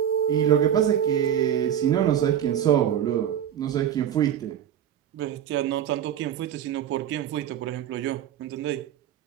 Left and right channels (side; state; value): left; quieter; 9.9 dB